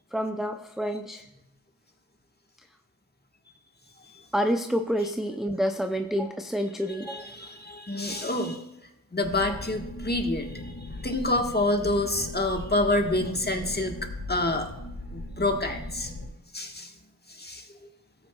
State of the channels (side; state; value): both; normal; correlation 0.39